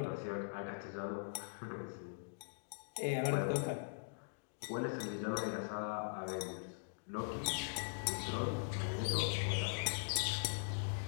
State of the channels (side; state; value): right; silent; digital silence